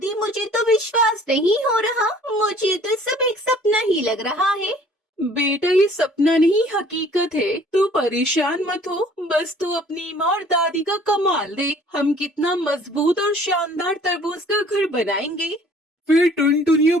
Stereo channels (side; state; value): both; normal; correlation 0.54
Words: मुझे तो विश्वास नहीं हो रहा। मुझे तो सब एक सपना ही लग रहा है। बेटा, ये सपना नहीं हकीकत है। तू परेशान मत हो, बस तू अपनी माँ और दादी का कमाल देख। हम कितना मजबूत और शानदार तरबूज का घर बनाएंगे। फिर टुनटुनी और